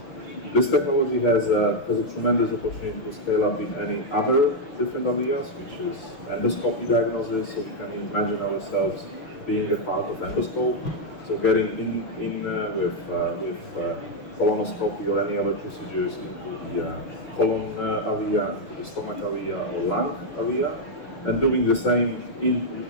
This technology has a tremendous opportunity to scale up in any other different areas, which is endoscopy diagnosis. So we can imagine ourselves being a part of endoscope. So getting in with colonoscopy or any other procedures into the colon area, into the stomach area or lung area, and doing the same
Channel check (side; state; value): right; late; 6.5 ms